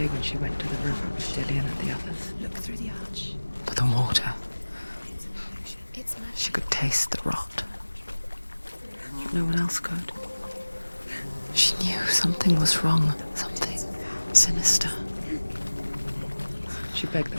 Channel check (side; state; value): both; inverted; correlation -1.00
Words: when she went to the river with Dillian and the others. Look through the arch. But the water, It's an illusion. It's she could taste the rot. But no one else could. She knew something was wrong, something sinister. She begged